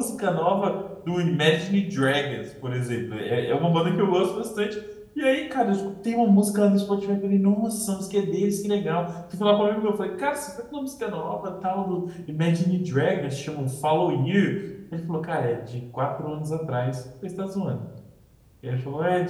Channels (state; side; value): identical; both; correlation 1.00